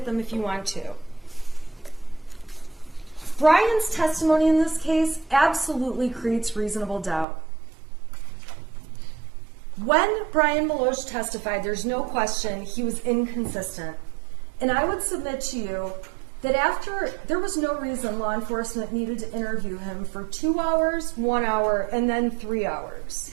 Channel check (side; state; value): left; drops out; at 7.2 s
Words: them if you want to. Brian's testimony in this case absolutely creates reasonable doubt. When Brian Meloche testified, there's no question he was inconsistent. And I would submit to you that after, there was no reason law enforcement needed to interview him for 2 hours, 1 hour, and then 3